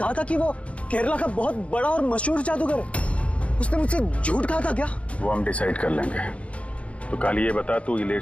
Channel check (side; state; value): right; late; 0.063 ms